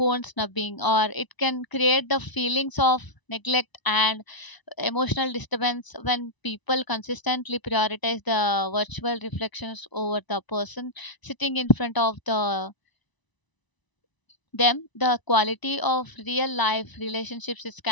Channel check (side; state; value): right; late; 1.0 ms